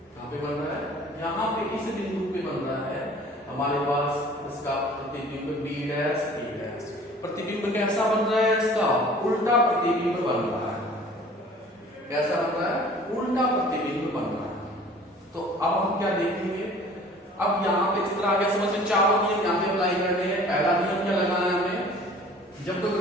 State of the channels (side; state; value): both; normal; correlation 0.49